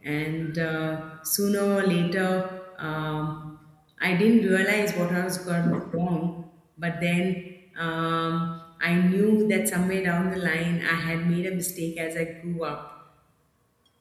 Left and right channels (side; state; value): both; identical; correlation 1.00